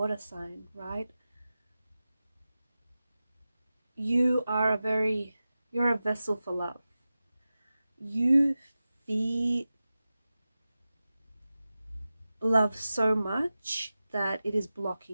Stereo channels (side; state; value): both; inverted; correlation -0.94